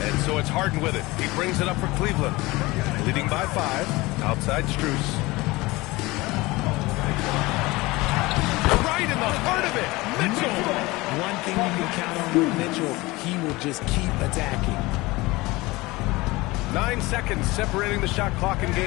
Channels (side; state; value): right; quieter; 21.5 dB